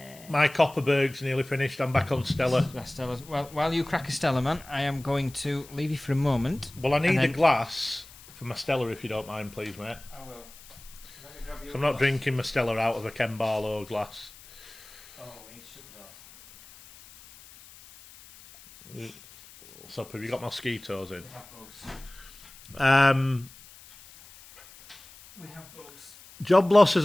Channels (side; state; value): left; noise; hiss, 21 dB below the sound